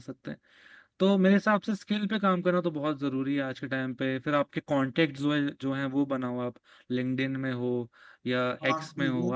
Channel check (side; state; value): both; identical; correlation 1.00